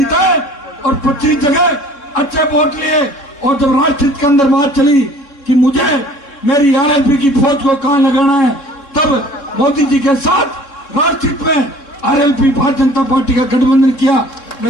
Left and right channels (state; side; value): late; right; 3.6 ms